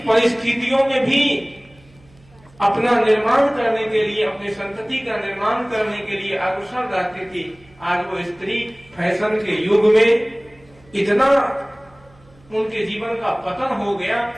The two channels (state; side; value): noise; right; hum, 28 dB below the sound